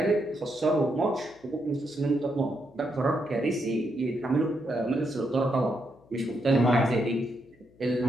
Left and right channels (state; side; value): noise; left; hum, 29 dB below the sound